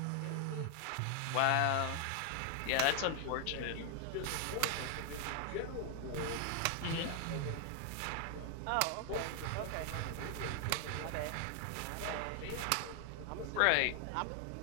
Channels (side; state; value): both; different; correlation 0.00